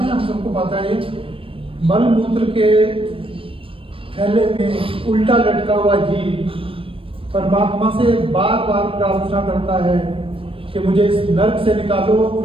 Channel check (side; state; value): left; late; 0.26 ms